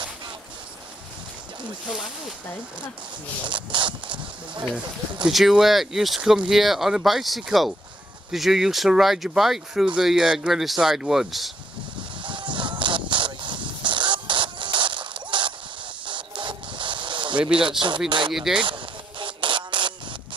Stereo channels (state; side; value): normal; both; correlation 0.72